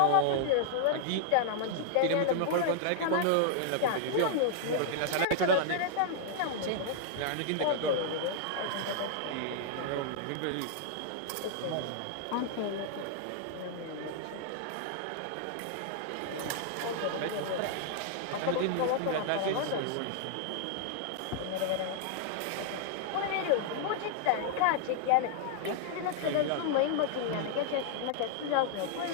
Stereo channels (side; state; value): both; different; correlation -0.01